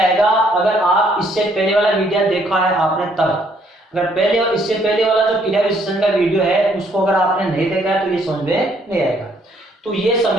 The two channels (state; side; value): normal; both; correlation 0.67